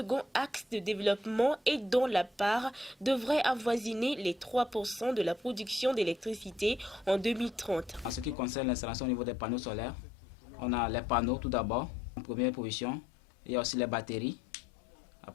axe de développement et dont la part devrait avoisiner les 3% de la production d'électricité en 2030. En ce qui concerne l'installation au niveau des panneaux solaires, on a les panneaux tout d'abord, en première position. Il y a aussi les batteries.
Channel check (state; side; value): drops out; right; at 8.3 s